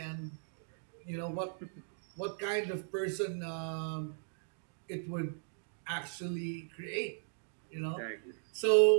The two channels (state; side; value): silent; left; digital silence